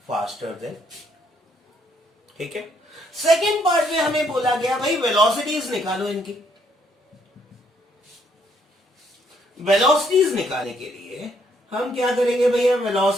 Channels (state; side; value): normal; both; correlation 0.70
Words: faster than, ठीक है। सेकेंड पार्ट में हमें बोला गया भाई वेलोसिटीज निकालो इनकी। वेलोसिटीज निकालने के लिए हम क्या करेंगे भैया,